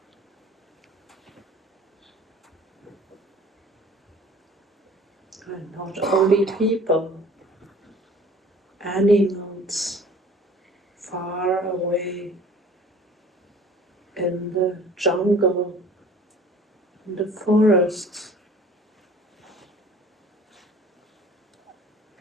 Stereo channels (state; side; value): normal; both; correlation 0.48